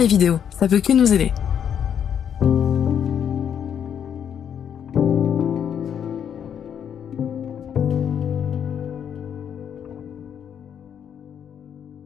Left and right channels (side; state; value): right; quieter; 8.5 dB